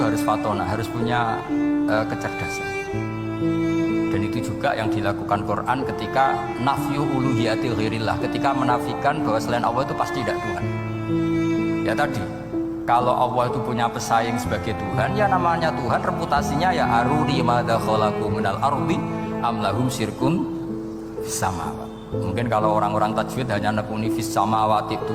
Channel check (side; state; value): both; identical; correlation 1.00